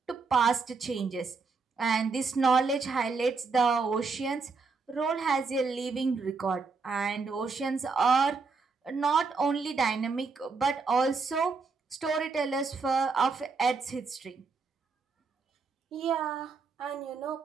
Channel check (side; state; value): left; quieter; 4.6 dB